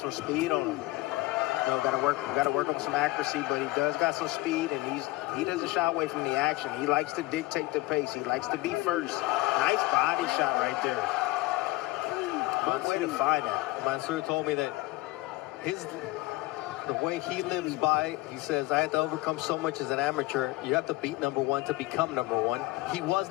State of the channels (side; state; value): right; quieter; 19.7 dB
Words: speed on him. You know, got to work on some accuracy, but he does got some speed, and he doesn't shy away from the action. He likes to dictate the pace. He likes to be first. Nice body shot right there. Good way to find that. Mansour told me that the way he lives by, he says, I had to overcome so much as an amateur. You have to beat #1 to become #1. He was